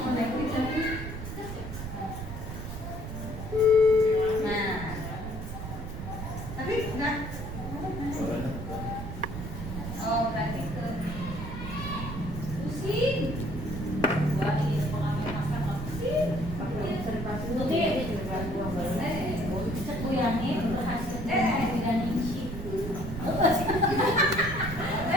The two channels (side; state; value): right; noise; rumble, 7 dB below the sound